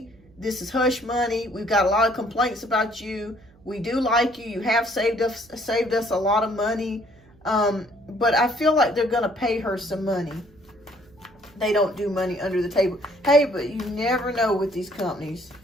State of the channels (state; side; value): noise; right; hum, 29 dB below the sound